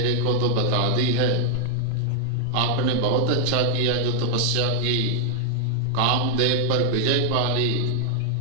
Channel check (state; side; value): different; both; correlation -0.01